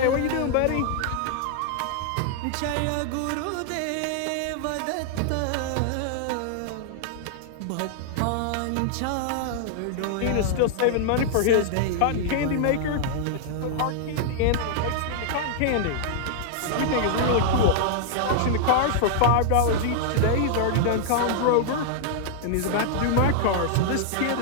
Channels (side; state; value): both; different; correlation -0.01